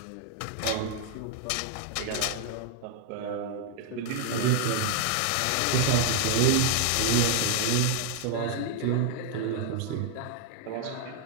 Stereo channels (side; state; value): both; different; correlation 0.00